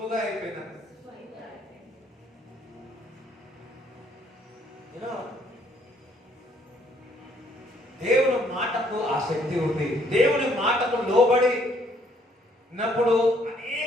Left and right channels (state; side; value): normal; both; correlation 0.65